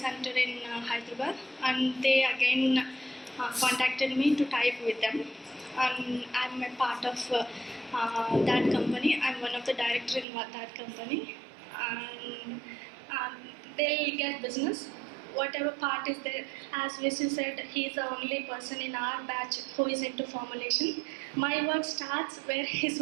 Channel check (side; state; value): left; drops out; at 10.2 s